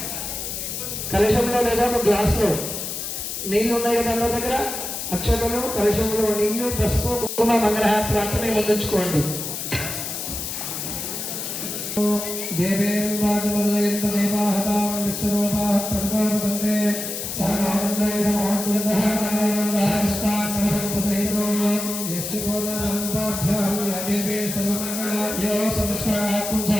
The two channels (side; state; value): left; noise; hiss, 5 dB below the sound